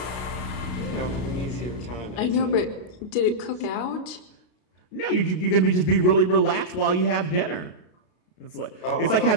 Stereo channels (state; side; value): late; right; 33 ms